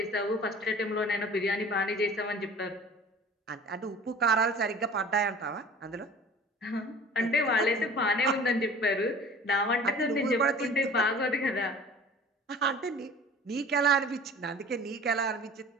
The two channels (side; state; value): both; normal; correlation 0.44